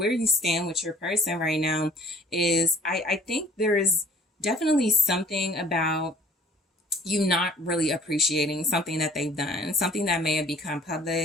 you stand with your person right now is, I think there is definitely something about you not really appreciating something that they've done, something that may have become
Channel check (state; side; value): normal; both; correlation 0.54